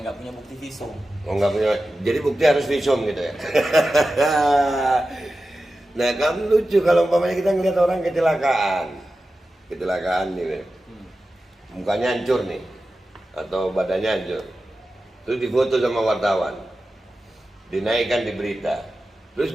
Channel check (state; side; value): normal; both; correlation 0.93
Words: nggak punya bukti visum. nggak punya. Jadi bukti harus visum gitu ya. Nah, kan lucu kalau umpamanya kita ngeliat orang kecelakaan nih, mukanya hancur nih, atau badannya hancur, terus difoto sama wartawan, dinaikkan di berita, terus